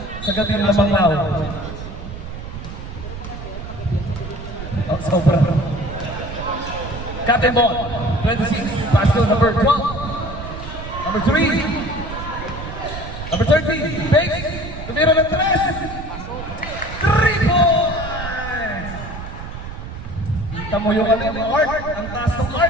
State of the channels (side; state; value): right; noise; rumble, 9 dB below the sound